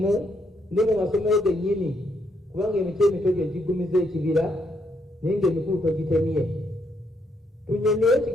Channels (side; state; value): both; normal; correlation 0.75